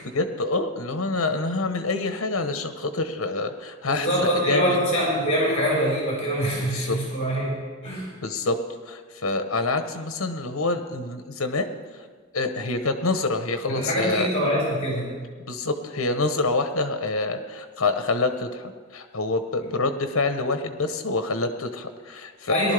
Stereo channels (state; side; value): normal; both; correlation -0.07